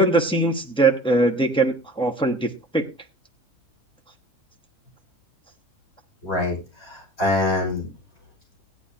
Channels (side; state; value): both; normal; correlation 0.43